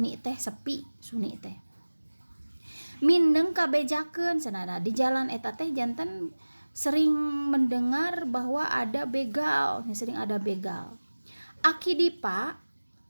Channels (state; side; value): inverted; both; correlation -1.00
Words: teh sepi, suni teh mindeng kabejakeun cenah. Di jalan eta teh jantan sering mendengar bahwa ada begal, sering ada begal. Aki dipa